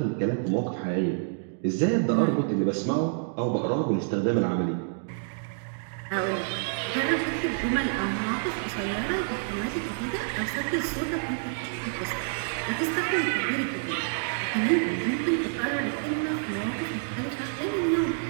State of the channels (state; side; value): silent; left; digital silence